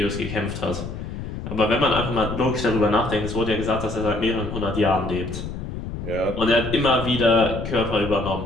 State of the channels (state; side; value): noise; left; rumble, 8 dB below the sound